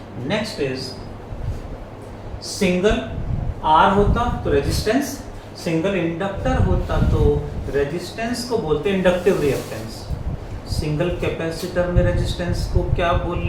नेक्स्ट इज सिंगल R होता तो रेजिस्टेंस, सिंगल इंडक्टर होता तो रेजिस्टेंस को बोलते हैं इंडक्टिव रिएक्टेंस। सिंगल कैपेसिटर में रेजिस्टेंस को क्या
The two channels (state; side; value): identical; both; correlation 1.00